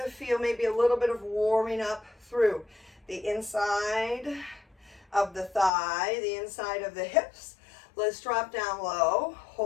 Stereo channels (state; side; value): drops out; right; at 5.7 s